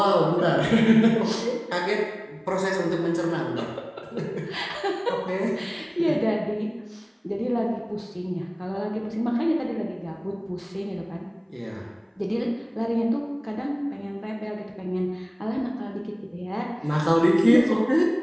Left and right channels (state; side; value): identical; both; correlation 1.00